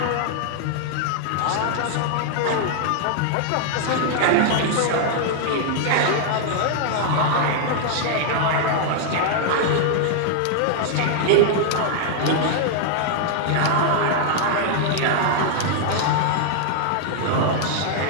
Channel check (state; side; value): different; both; correlation -0.01